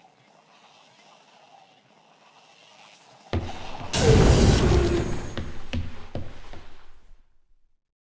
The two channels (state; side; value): identical; both; correlation 1.00